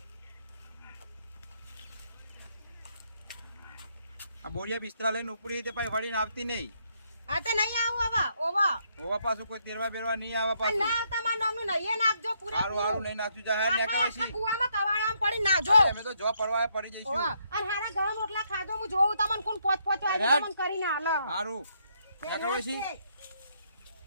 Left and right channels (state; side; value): inverted; both; correlation -0.74